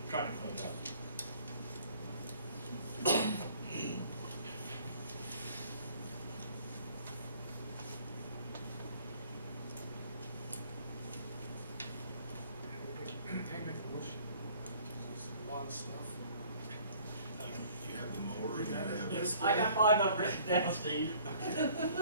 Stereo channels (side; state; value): both; inverted; correlation -0.55